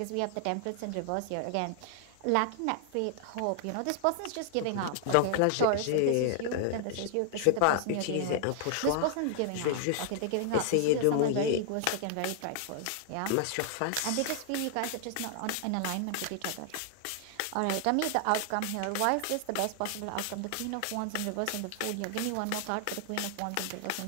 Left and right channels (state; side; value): different; both; correlation 0.00